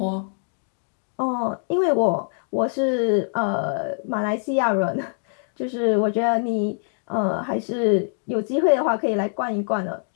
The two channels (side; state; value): right; silent; digital silence